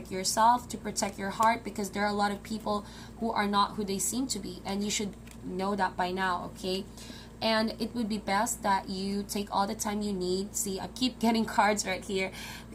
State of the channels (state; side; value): identical; both; correlation 1.00